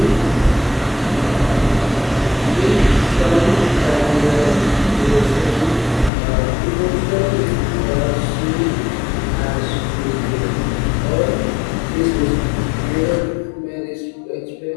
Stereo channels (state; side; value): drops out; right; at 6.1 s